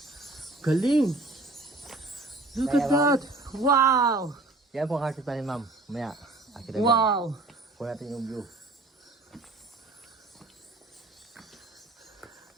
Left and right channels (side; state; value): left; quieter; 3.1 dB